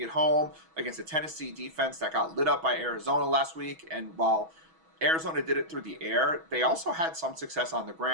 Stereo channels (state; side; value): late; left; 6.2 ms